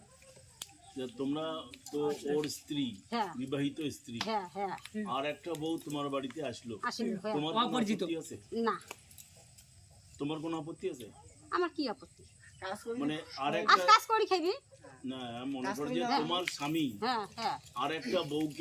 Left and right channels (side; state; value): both; identical; correlation 1.00